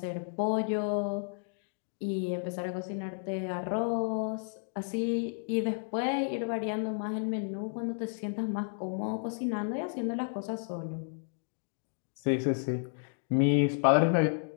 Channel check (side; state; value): right; silent; digital silence